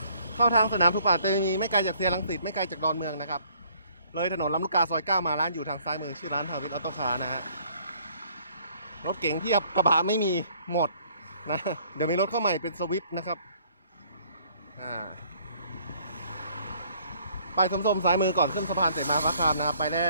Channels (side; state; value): both; inverted; correlation -0.61